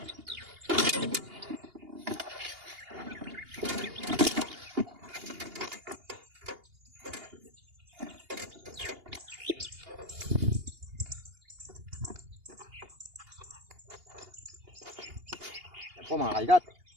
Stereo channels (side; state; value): left; late; 2.8 ms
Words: Po mga kaigat,